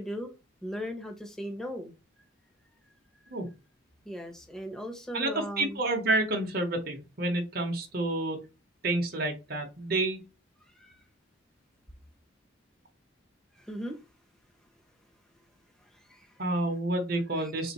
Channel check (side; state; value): both; normal; correlation 0.39